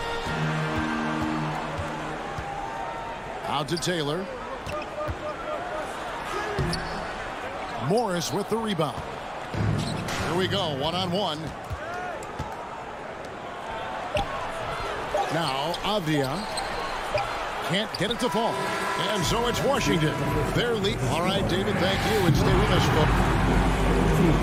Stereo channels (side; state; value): both; identical; correlation 1.00